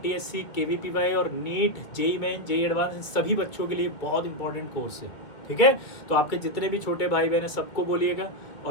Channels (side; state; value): right; late; 1.9 ms